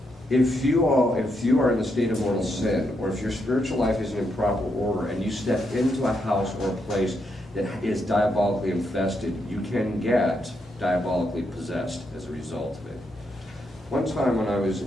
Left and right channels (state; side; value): normal; both; correlation 0.80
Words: if you are in the state of mortal sin, or if your spiritual life isn't in proper order, and you step into a house or a place that is diabolically infested, you can get diabolically possessed as a result of it. One time when I was